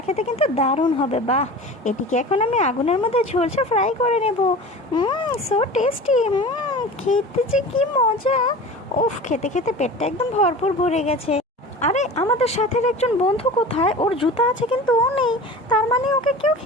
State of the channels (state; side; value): normal; both; correlation 0.36